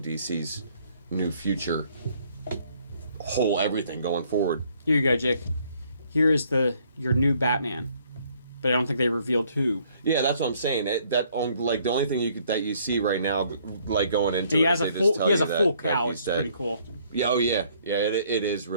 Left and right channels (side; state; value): both; inverted; correlation -0.64